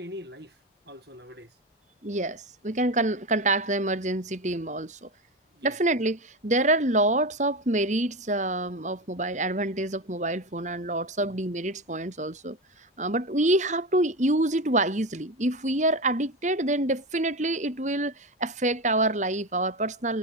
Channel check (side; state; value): both; normal; correlation 0.19